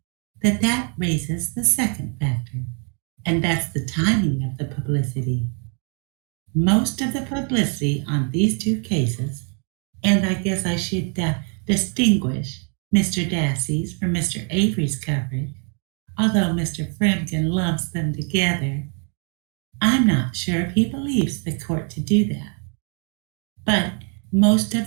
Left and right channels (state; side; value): quieter; left; 39.9 dB